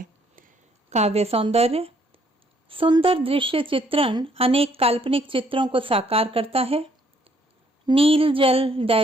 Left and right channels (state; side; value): normal; both; correlation 0.67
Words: काव्य सौंदर्य। सुंदर दृश्य चित्रण अनेक काल्पनिक चित्रों को साकार करता है। नील जल